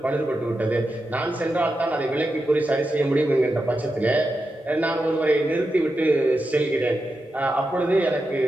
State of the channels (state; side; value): normal; both; correlation 0.89